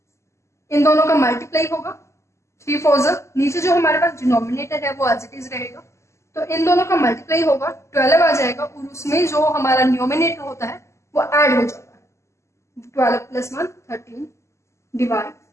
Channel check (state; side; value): late; right; 0.13 ms